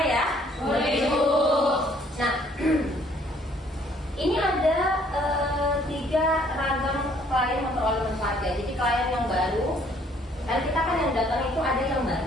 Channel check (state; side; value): normal; both; correlation 0.62